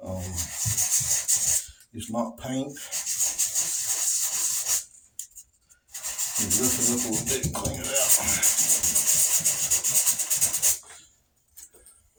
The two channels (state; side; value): identical; both; correlation 1.00